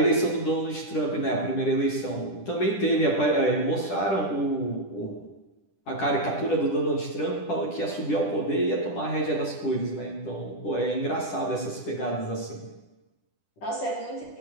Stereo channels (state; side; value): late; right; 10 ms